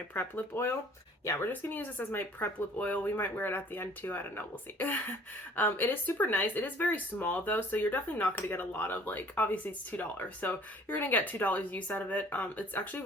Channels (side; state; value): both; normal; correlation 0.53